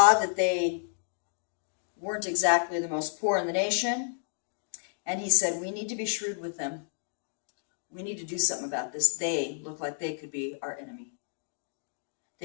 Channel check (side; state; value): right; silent; digital silence